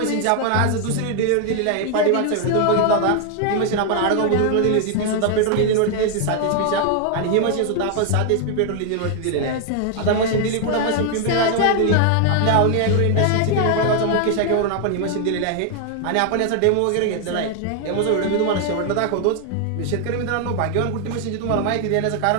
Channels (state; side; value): different; both; correlation 0.00